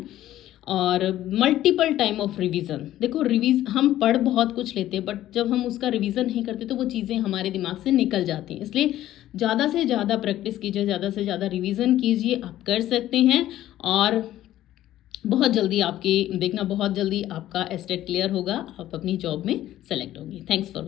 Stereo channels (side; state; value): right; quieter; 13.6 dB